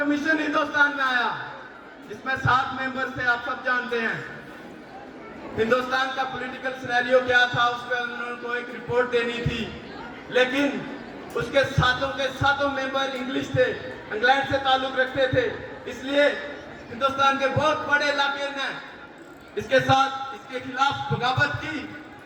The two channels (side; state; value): both; identical; correlation 1.00